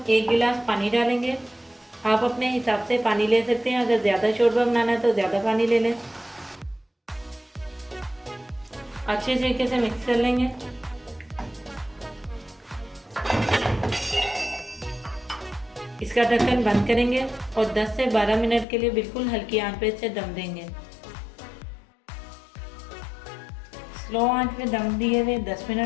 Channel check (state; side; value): drops out; right; at 18.7 s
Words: 1 गिलास पानी डालेंगे। आप अपने हिसाब से पानी ले सकते हैं, अगर ज़्यादा शोरबा बनाना है तो ज़्यादा पानी ले लें। अच्छे तरीके से मिक्स कर लेंगे। इसका ढक्कन बंद करेंगे और 10 से 12 मिनट के लिए बिल्कुल हल्की आंच पे इसे दम देंगे। स्लो आंच पे दम दिए हुए 10